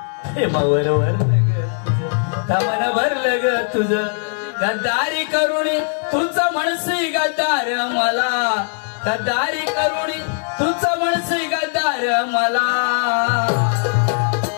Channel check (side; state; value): right; silent; 66 dB below the other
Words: प्रेमावर वरलं ग तुझं, तमन भरलं ग तुझं, गद्दारी करुणी तुझं म्हणसी गद्दार मला, गद्दारी करुणी तुझं म्हणसी गद्दार मला.